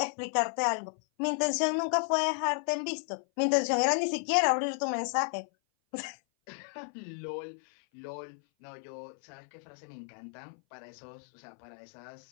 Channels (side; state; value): right; silent; 56 dB below the other